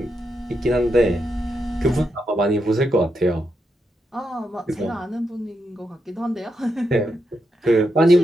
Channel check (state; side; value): normal; both; correlation 0.84